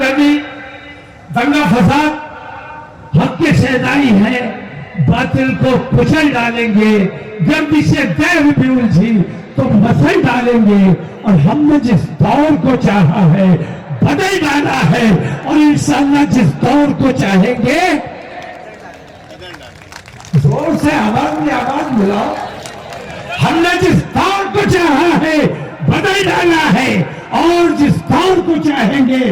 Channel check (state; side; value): identical; both; correlation 1.00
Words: दंगा फसाद। हक के शहदाई है, बातिल को कुचल डालेंगे। गर्दिशे दैव भी उलझी तो मसल डालेंगे, और हमने जिस दौर को चाहा है बदल डाला है, और इंशाअल्लाह जिस दौर को चाहेंगे, जोर से आवाज मिलाओ, हमने जिस दौर को चाहा है बदल डाला है, और जिस दौर को चाहेंगे